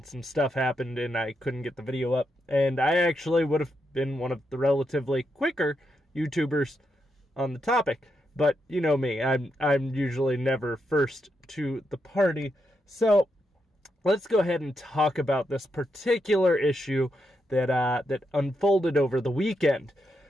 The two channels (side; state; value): both; normal; correlation 0.83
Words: some stuff happened and I couldn't get the video up, and I actually would have been one of the relatively quicker YouTubers on the topic, but you know me, I'm usually never first to the party, so let's go ahead and talk about this particular issue that unfolded over the weekend.